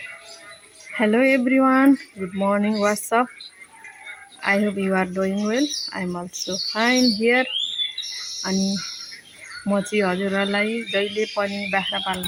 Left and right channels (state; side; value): identical; both; correlation 1.00